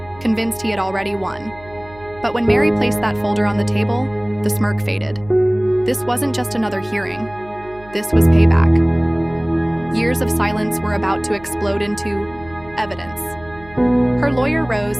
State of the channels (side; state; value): right; noise; hum, 22 dB below the sound